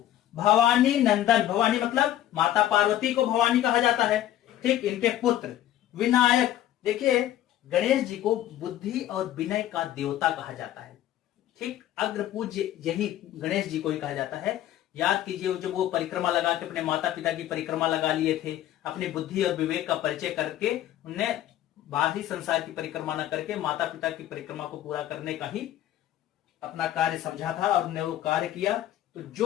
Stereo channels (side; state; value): right; quieter; 12.8 dB